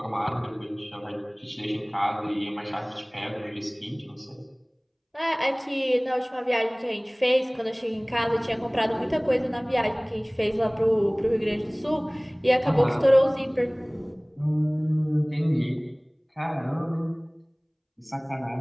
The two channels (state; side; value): identical; both; correlation 1.00